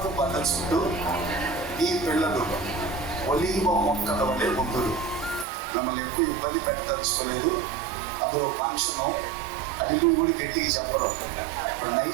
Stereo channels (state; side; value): drops out; left; at 5.5 s